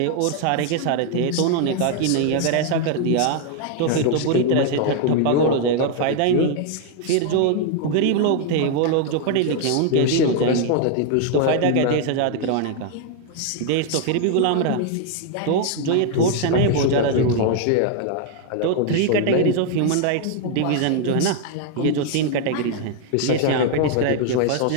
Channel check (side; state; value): both; different; correlation 0.00